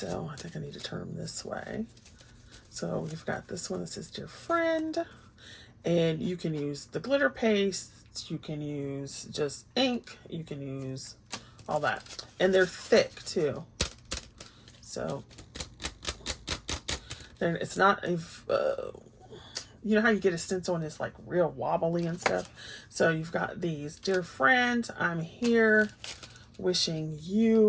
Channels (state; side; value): identical; both; correlation 1.00